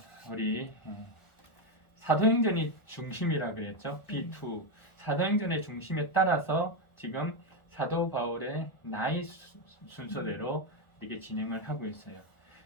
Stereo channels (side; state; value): right; late; 1.4 ms